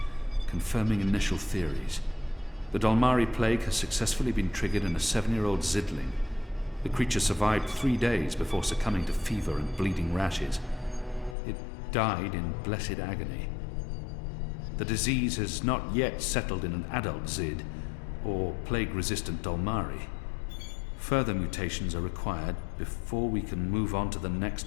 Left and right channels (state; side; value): drops out; right; at 11.4 s